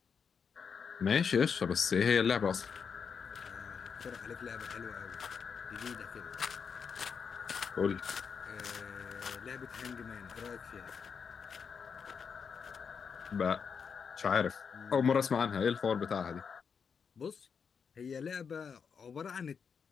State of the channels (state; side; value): quieter; right; 6.3 dB